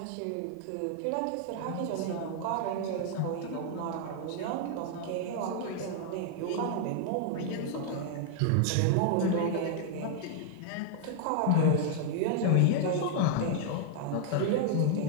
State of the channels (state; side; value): different; both; correlation 0.00